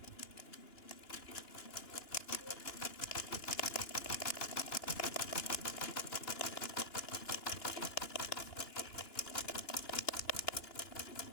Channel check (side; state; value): right; late; 2.9 ms